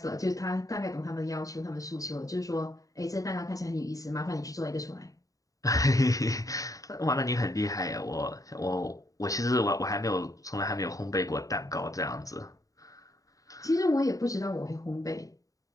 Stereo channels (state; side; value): late; right; 0.16 ms